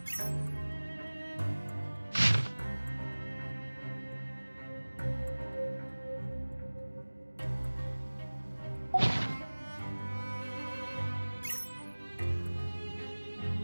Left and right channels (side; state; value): both; inverted; correlation -1.00